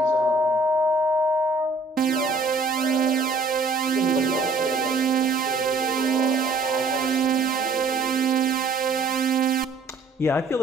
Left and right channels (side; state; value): left; quieter; 3.5 dB